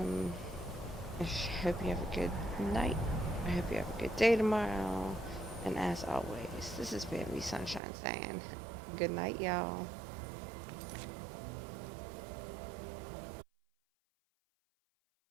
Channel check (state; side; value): drops out; left; at 7.8 s